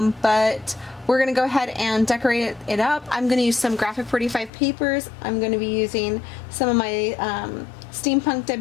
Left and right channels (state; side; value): drops out; right; at 4.5 s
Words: we're going to go ahead and decorate it up. I'm going to use some Graphic 45 papers. I'm going to be using some of my Steampunk